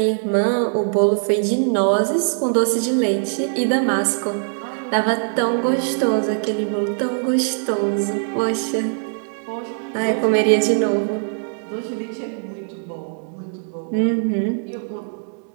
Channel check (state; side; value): silent; left; 65 dB below the other